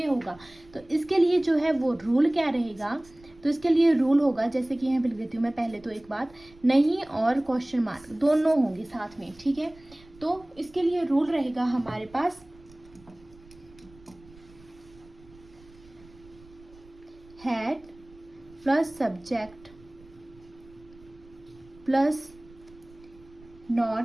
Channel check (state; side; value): noise; right; rumble, 24 dB below the sound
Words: होगा। तो इसके लिए जो है वो रूल क्या रहेगा, तो इसके लिए रूल होगा, जैसे कि यहाँ पे लिख देती हूँ मैं पहले तो एक बात, नहीं और क्वेश्चन मार्क दोनों होंगे साथ में, ठीक है। तो इसके लिए रूल रहेगा हमारे पास had plus subject plus